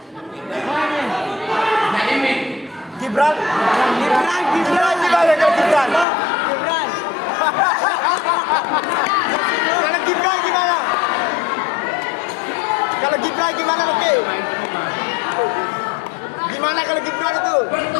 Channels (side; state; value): right; drops out; at 6.1 s